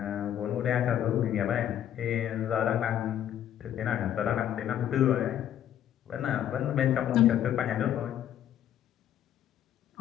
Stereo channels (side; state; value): right; quieter; 10.6 dB